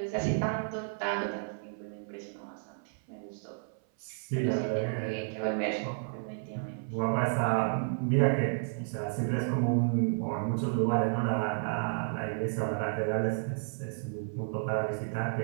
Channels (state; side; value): silent; left; 55 dB below the other